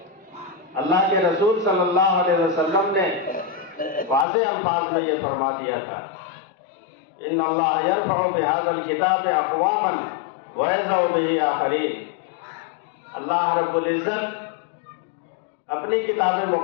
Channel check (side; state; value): right; drops out; at 4.2 s